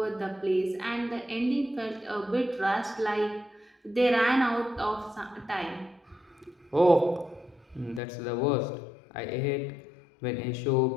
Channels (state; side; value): drops out; right; at 8.0 s